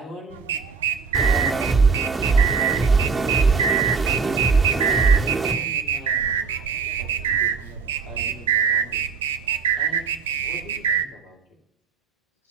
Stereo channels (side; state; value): left; quieter; 5.3 dB